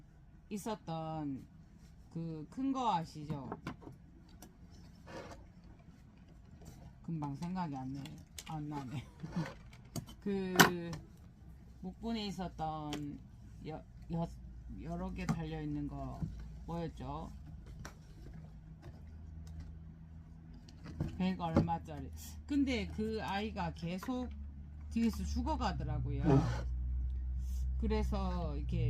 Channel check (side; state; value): both; identical; correlation 1.00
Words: 있었던 그 큰 거 아시죠? 금방 생각이 안 나네. 그 묵분에 있었던 여러 개 달려있는 거 뭐였죠? 100 얼마짜리. 근데 그 아이가 계속 뒤에서 죽어가더라고요. 그래서